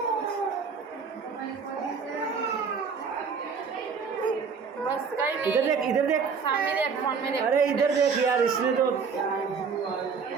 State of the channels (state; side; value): quieter; left; 5.7 dB